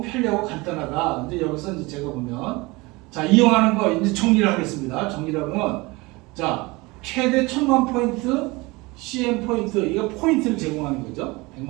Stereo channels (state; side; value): quieter; left; 23.5 dB